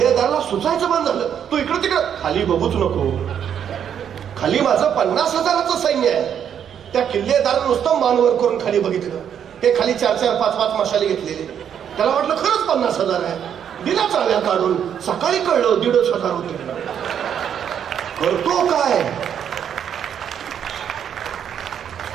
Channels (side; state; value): left; quieter; 8.7 dB